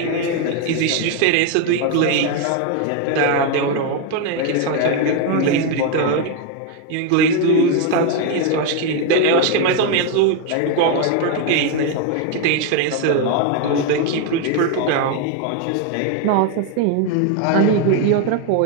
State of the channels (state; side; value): different; both; correlation 0.01